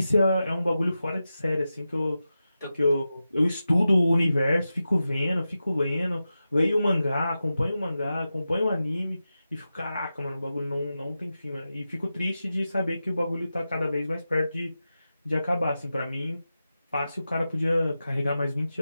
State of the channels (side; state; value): both; inverted; correlation -0.92